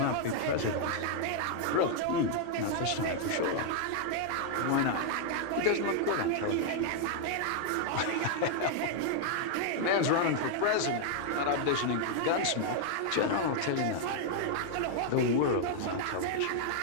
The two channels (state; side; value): different; both; correlation -0.01